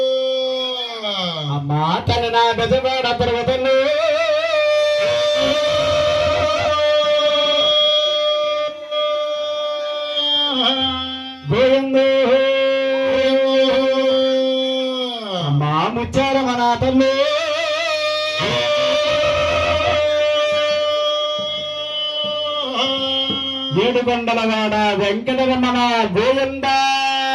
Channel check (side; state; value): both; identical; correlation 1.00